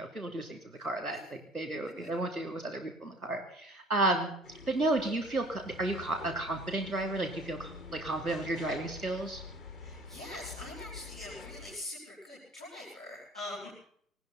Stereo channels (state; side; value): normal; both; correlation 0.50